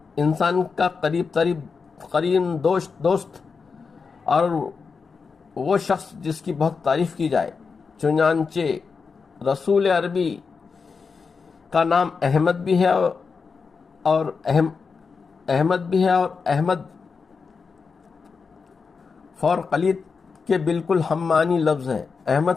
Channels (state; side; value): quieter; right; 5.1 dB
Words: انسان کا قریب دوست اور وہ شخص جس کی بہت تعریف کی جائے۔ چنانچہ رسول عربی کا نام احمد بھی ہے اور احمد فار قلیط کے بالکل ہم معنی لفظ ہے۔